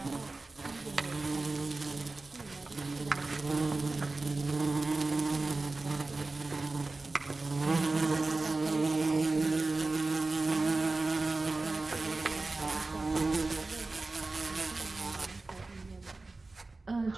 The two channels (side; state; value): left; quieter; 3.4 dB